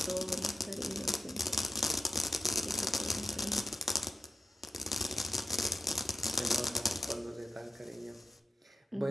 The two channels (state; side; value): normal; both; correlation 0.91